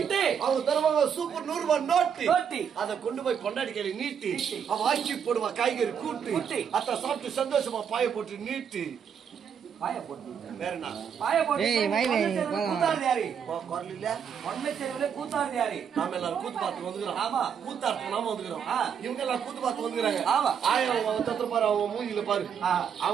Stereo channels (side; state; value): left; quieter; 7.6 dB